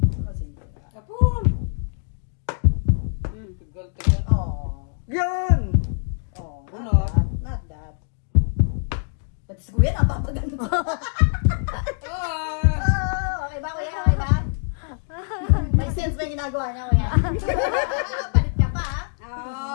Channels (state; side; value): silent; right; digital silence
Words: Kapun. Oh. Yun! Not that. Pati sa kuya, napapaganda. Okay ba, kuya? Okay ba? May sense ba yung ginagawa niya, kuya? Palit ka pa, ha?